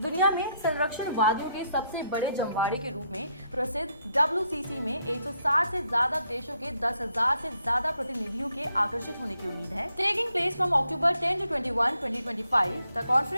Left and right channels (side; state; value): both; inverted; correlation -0.75